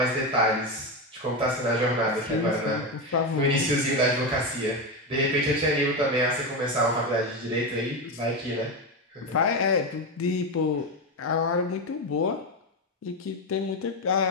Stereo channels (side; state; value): both; normal; correlation 0.13